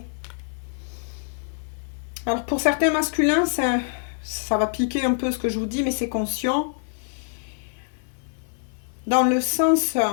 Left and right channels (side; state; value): right; silent; 61 dB below the other